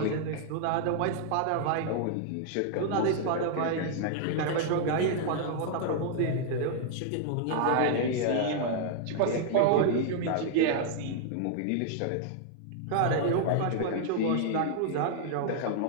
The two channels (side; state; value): both; different; correlation -0.01